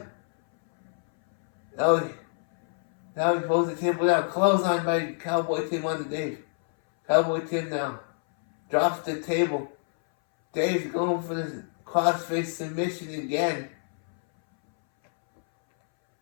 Now he throws the table down. Clothesline by Cowboy Tim on the Dave. Cowboy Tim now drops the table. Dave's going for the crossface submission again.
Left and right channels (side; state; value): right; silent; 60 dB below the other